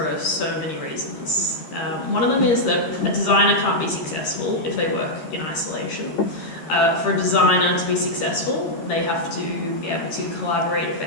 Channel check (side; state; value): right; late; 13 ms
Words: so many reasons. One of them is that a designer can't be successful if they work in isolation. For a designer to be successful, they have to be able to collaborate